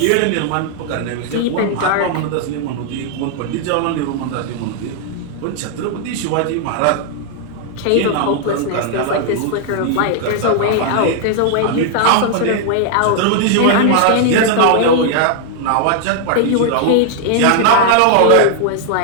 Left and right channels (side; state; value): both; different; correlation 0.00